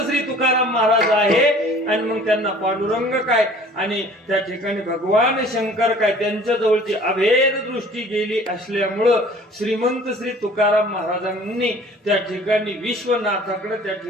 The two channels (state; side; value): normal; both; correlation 0.50